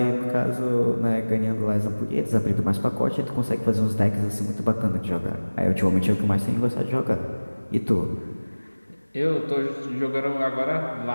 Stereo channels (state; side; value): inverted; both; correlation -1.00